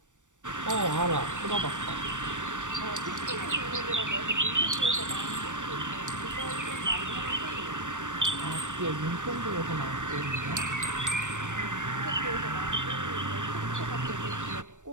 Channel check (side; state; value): left; late; 0.86 ms